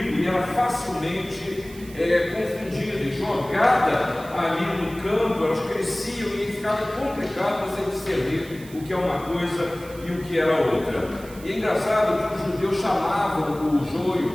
e era facilmente confundida e jogada ali no campo. Elas cresciam e ficava complicado você discernir o que é uma coisa e o que era outra. E é engraçado que os judeus chamavam o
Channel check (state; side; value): noise; right; hiss, 20 dB below the sound